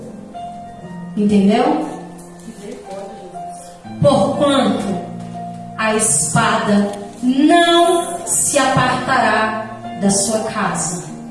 Entendeu? Porquanto a espada não se apartará da sua casa.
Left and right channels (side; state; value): both; identical; correlation 1.00